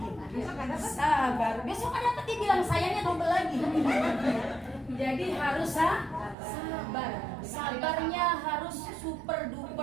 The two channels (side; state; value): left; drops out; at 6.4 s